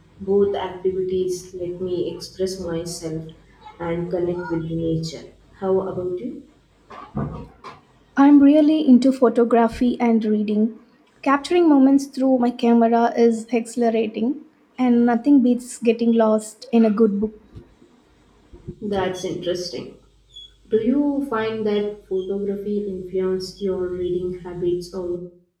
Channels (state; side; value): identical; both; correlation 1.00